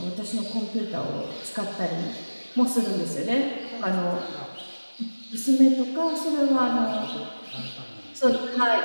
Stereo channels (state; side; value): inverted; both; correlation -1.00